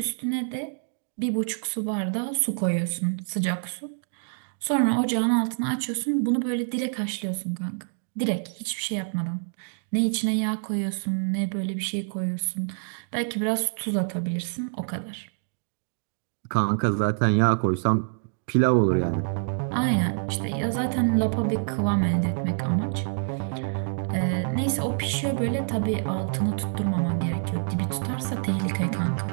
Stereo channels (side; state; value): left; silent; digital silence